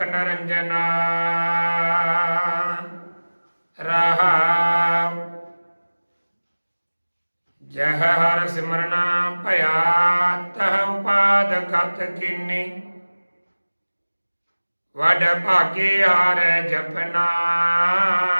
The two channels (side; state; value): both; inverted; correlation -1.00